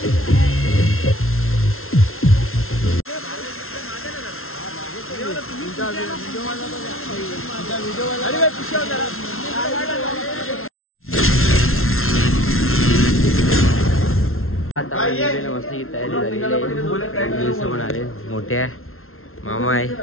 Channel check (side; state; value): right; late; 0.62 ms